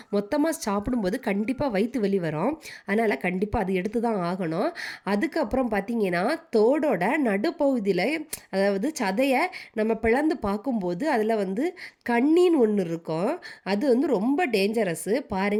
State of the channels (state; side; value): identical; both; correlation 1.00